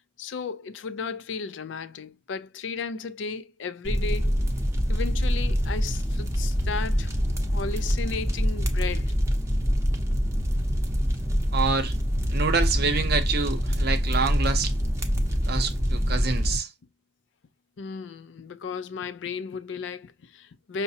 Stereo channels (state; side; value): normal; both; correlation 0.76